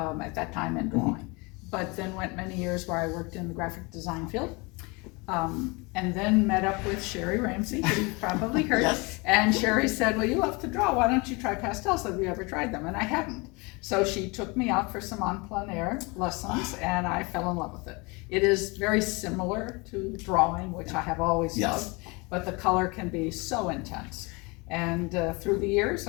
that time and drawing, but then went many years where I worked in the graphic design field. And then met up with Sherry Ramsey, who you've probably heard. Yes. And Sherry said, well, you love to draw, why don't you try pastels? Have you ever tried them? And I hadn't. So she took me out for some en plein air lessons, and I fell in love with it. It is very similar to drawing, which I have always loved, but the color can be so intense. And through the years,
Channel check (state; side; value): quieter; right; 27.4 dB